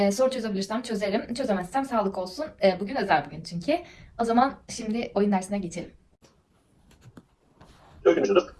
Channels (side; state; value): both; identical; correlation 1.00